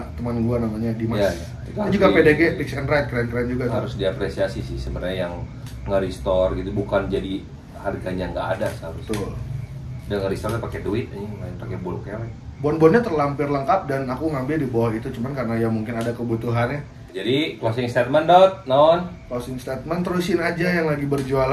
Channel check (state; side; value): identical; both; correlation 1.00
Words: teman gua namanya Dimas. Iya, iya. Itu Dia harus juga di- PDG, Fix and Ride, keren-keren juga tuh. Harus diapresiasi sih sebenarnya yang nge-restore gitu, bukan jadi harganya nggak ada seharusnya. Betul. Dia nge-restore pakai duit, ini main pakai bulu kelek. Bon-bonnya terlampir lengkap dan aku ngambil di bawah itu cuman karena ya mungkin ada kebutuhannya. Jadi closing statement dot non. Closing statement, terusin aja yang lagi